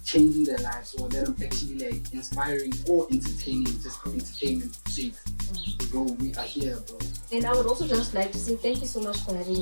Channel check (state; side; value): inverted; both; correlation -1.00